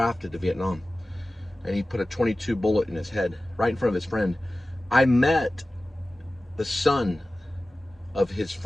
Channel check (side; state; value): both; normal; correlation 0.96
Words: to Vietnam, and he put a .22 bullet in his head right in front of his friend. I met the son of his